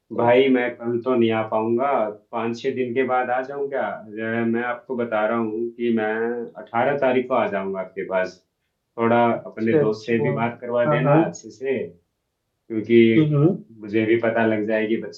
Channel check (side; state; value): both; identical; correlation 1.00